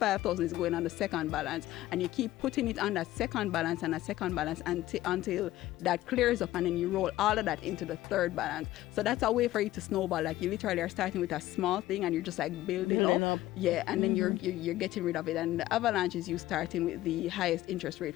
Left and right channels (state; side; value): quieter; right; 15.4 dB